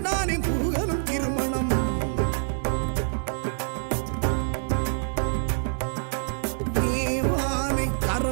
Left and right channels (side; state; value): left; silent; digital silence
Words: முருகனும் திருமணம் தேவானை